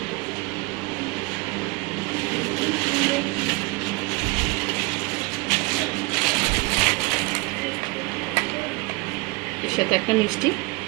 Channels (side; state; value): left; quieter; 25.1 dB